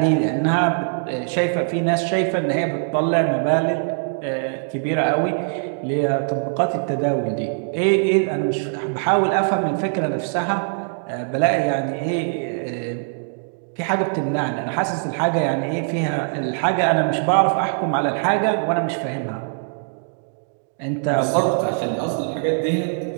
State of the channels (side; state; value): left; silent; digital silence